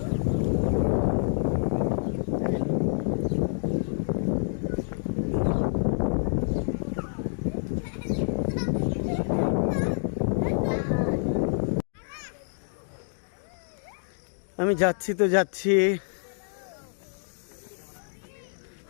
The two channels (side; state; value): right; silent; digital silence